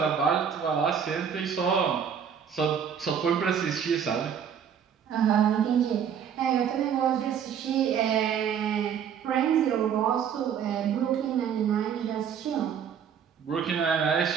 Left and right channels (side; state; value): left; quieter; 7.9 dB